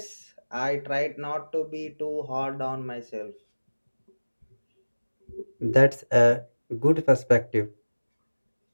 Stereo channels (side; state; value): both; inverted; correlation -1.00